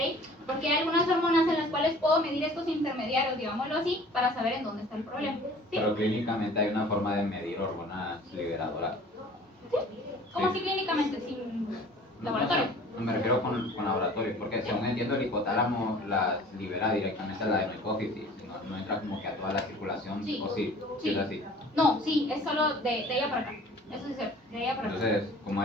Porque hay algunas hormonas en las cuales puedo medir estos intermediarios, digámoslo así, para saber en dónde está el problema. ¿Sí? Pero clínicamente hay una forma de medir hormonas liberadoras. ¿Cómo Sí. así clínicamente? ¿Sin laboratorio? No, me refiero con laboratorio, porque según entiendo el hipotálamo las libera directamente a la hipófisis, no entra como que a toda la circulación, Sí. o sí, Sí. es así. No, sí, es solo de ella para acá. Eso es cierto, de ella para acá. Entonces, ¿cómo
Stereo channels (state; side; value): normal; both; correlation 0.48